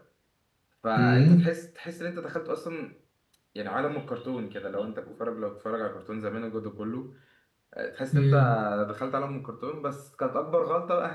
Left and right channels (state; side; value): identical; both; correlation 1.00